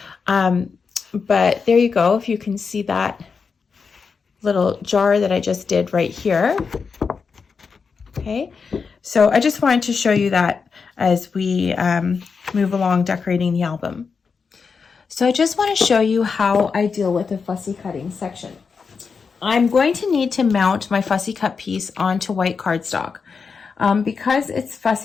But there you go. If you can see that little jar that I just did right here. Okay. So I just wanted to show you that as we move along decorating the album. So I just want to show you how I deal with the fussy cutting section. I'm going to need to mount my fussy cut piece onto white cardstock. Because it's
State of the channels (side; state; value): right; quieter; 5.4 dB